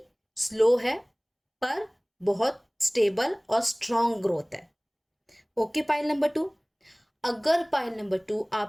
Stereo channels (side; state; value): both; identical; correlation 1.00